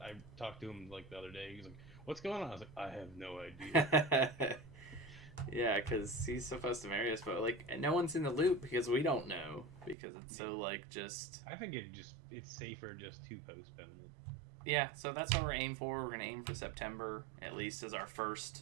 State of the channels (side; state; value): left; drops out; at 10.0 s